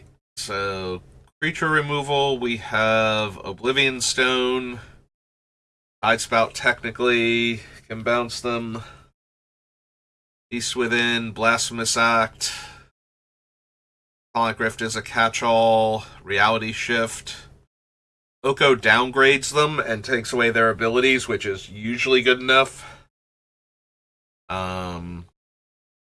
so creature removal, we have Oblivion Stone, Tidespout technically can bounce them, Beast Within, Blasphemous Act, Sonic Rift is a catch-all, Reality Shift. Oko downgrades them and takes away their abilities, which is usually good enough.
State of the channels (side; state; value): both; identical; correlation 1.00